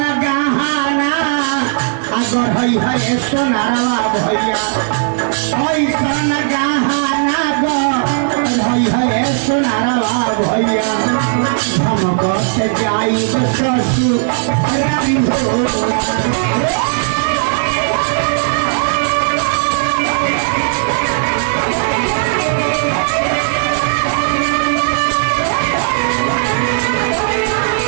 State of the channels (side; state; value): left; silent; 70 dB below the other